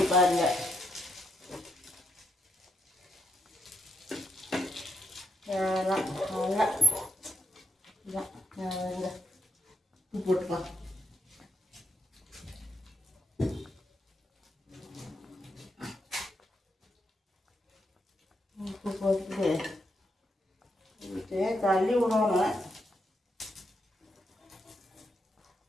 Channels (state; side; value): normal; both; correlation 0.79